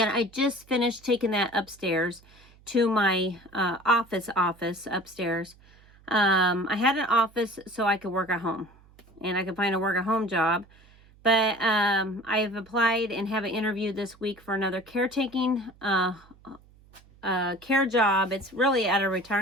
I just finished taking that upstairs to my office upstairs. I had an office so I could work at home, and I could find a work at home job. But I've applied and have an interview this week for another caretaking care job. It's really at a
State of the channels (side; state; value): right; noise; hum, 27 dB below the sound